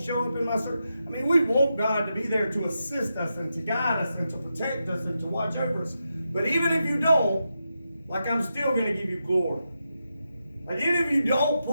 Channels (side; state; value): both; inverted; correlation -0.87